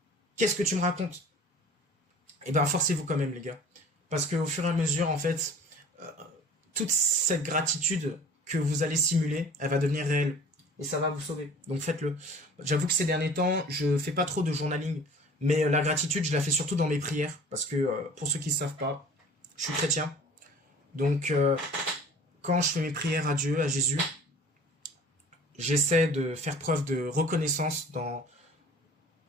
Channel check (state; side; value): normal; both; correlation 0.45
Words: qu'est-ce que tu me racontes? Eh ben, forcez-vous quand même, les gars. Parce qu'au fur et à mesure, en fait, toute cette gratitude que vous allez simuler, elle va devenir réelle. Et ça va vous sauver. Donc faites-le. J'avoue que ces derniers temps, je fais pas trop de journaling. Mais la gratitude, je la fais surtout dans mes prières. Parce que, pour ceux qui ne savent pas, je suis chrétien. Donc, quand je fais mes prières à Dieu, à Jésus, j'essaie de faire preuve de reconnaissance dans